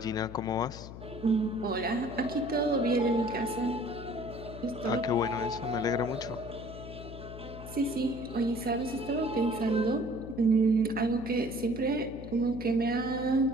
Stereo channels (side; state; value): left; noise; hum, 12 dB below the sound